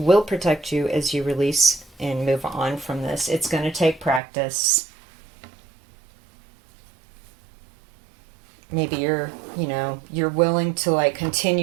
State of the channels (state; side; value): drops out; left; at 4.2 s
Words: protect you as you release and move on from this. It's going to take practice. Maybe you're willing to like